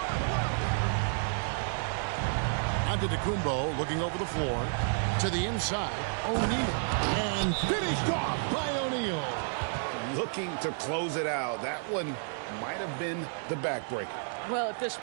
Antetokounmpo looking over the floor. To the inside. O'Neal. And finished off by O'Neal. Looking to close it out. That one might have been the backbreaker. Well, at this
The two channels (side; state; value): left; silent; 57 dB below the other